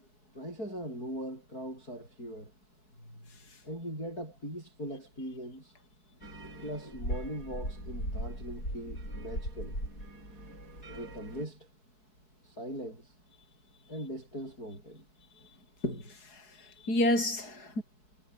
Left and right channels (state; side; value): late; right; 4.7 ms